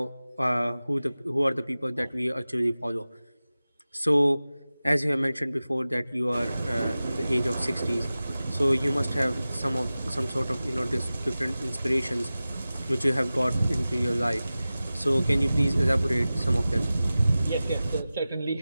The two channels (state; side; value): inverted; both; correlation -0.96